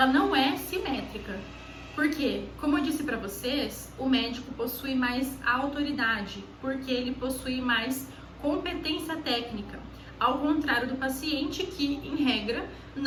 não é simétrica. Porque, como eu disse para vocês, o médico possui mais autoridade, porque ele possui mais competência técnica, ao contrário do paciente que, em regra,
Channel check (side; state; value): both; identical; correlation 1.00